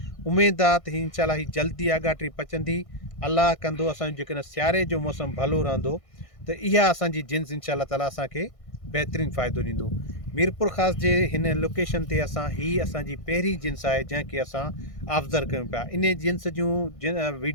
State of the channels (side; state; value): right; late; 1.6 ms